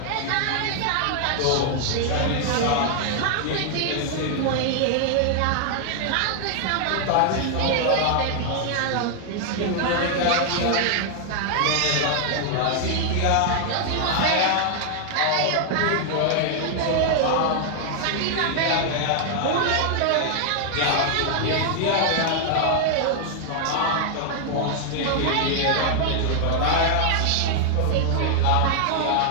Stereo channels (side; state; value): both; different; correlation 0.00